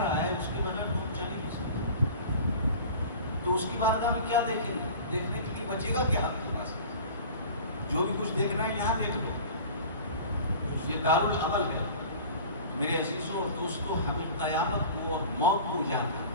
ہے اس کے بغیر ہم چل ہی نہیں سکتے. تو اس کی بارگاہ میں کیا دیکھیں گے؟ دیکھنے کے لیے بچے گا کیا آپ کے پاس؟ جو بھی کچھ دیکھنا ہے یہاں دیکھ لو. یہ دارالعمل ہے. میرے عزیزوں اور دوستوں، ہمیں قیامت کو اور موت کو یاد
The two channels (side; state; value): both; inverted; correlation -0.40